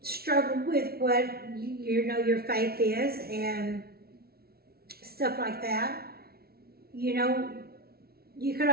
struggled with what, you know, your faith is and stuff like that, you know, you could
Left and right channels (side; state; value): left; late; 0.44 ms